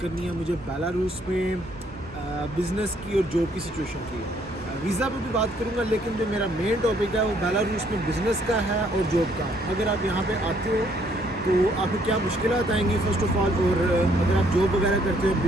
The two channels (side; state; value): both; normal; correlation 0.66